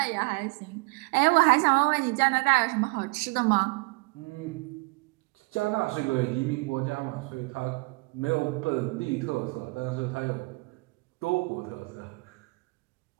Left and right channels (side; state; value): left; quieter; 28.0 dB